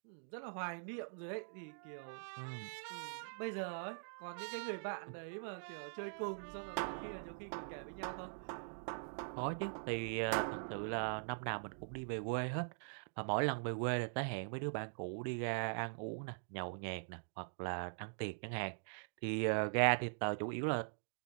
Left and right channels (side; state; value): left; silent; digital silence